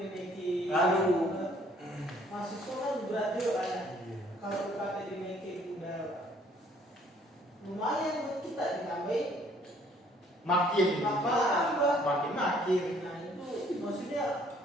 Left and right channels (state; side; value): normal; both; correlation 0.61